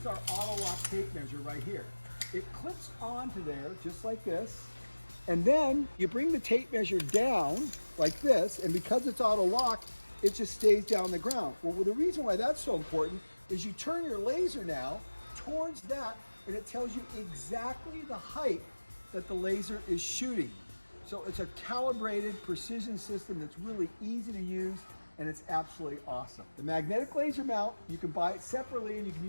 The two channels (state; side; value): inverted; both; correlation -1.00